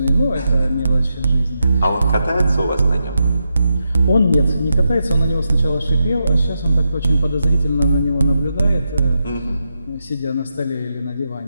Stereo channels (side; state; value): both; inverted; correlation -0.85